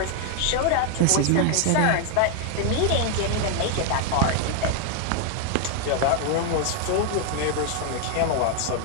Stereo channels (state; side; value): different; both; correlation 0.00